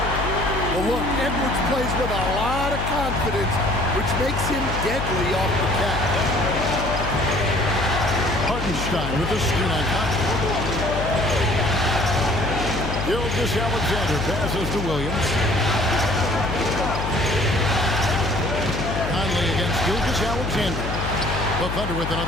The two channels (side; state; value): left; noise; hum, 4 dB below the sound